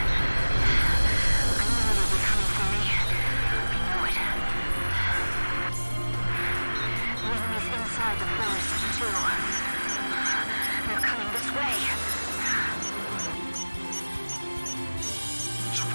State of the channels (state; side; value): inverted; both; correlation -1.00